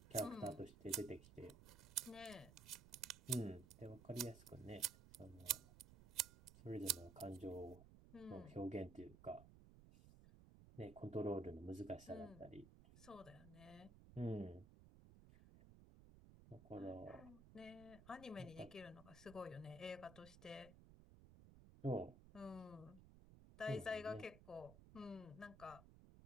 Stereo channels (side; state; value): right; noise; rumble, 17 dB below the sound